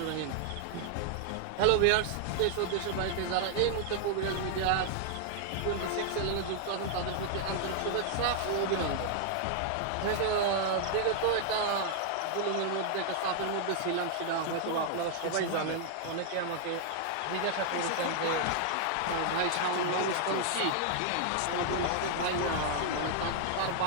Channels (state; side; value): different; both; correlation -0.01